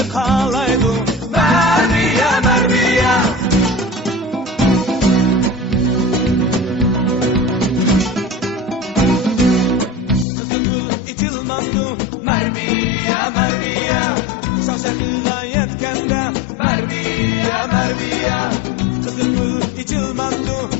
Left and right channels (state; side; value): drops out; right; at 10.2 s